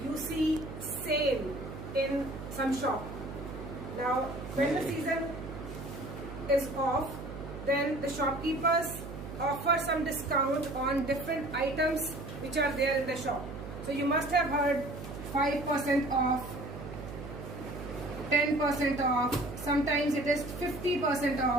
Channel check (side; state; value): right; noise; hum, 10 dB below the sound